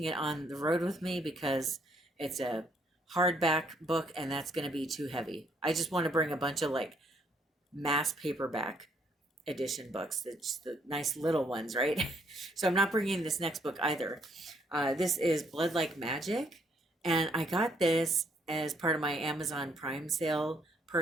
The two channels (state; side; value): normal; both; correlation 0.68